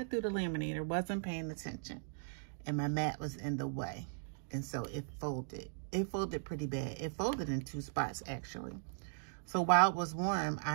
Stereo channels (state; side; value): silent; left; digital silence